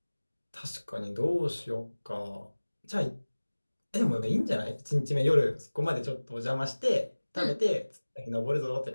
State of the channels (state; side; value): inverted; both; correlation -1.00